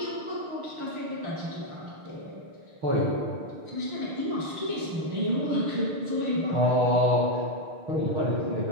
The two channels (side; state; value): left; late; 6.5 ms